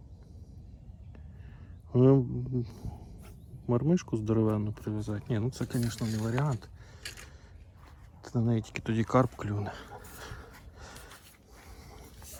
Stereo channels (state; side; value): identical; both; correlation 1.00